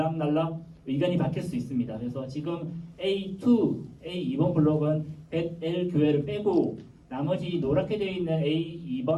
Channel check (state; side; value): identical; both; correlation 1.00